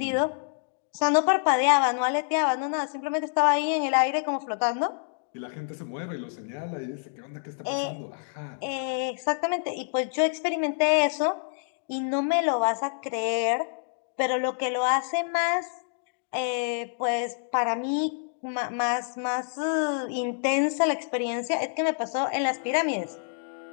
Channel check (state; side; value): silent; right; digital silence